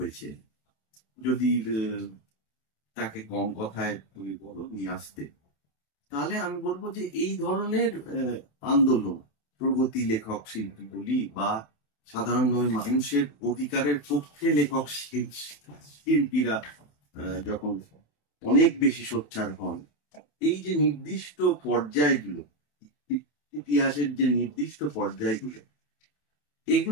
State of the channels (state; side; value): late; right; 27 ms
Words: যদি তাকে কম কথায় তুমি বলো নিয়ে আসতে, তাহলে আমি বলবো যে এই ধরনের আন্দোলন, প্রগতি লেখক শিল্পী বলি বা সাধারণভাবে মানুষের অধিকারের পক্ষে লেখক শিল্পীরা যখন অনেক বেশি সোচ্চার হন, এই যে নির্দিষ্ট পর্যায়গুলো, ইতিহাসের যে নির্দিষ্ট পর্যায়গুলো,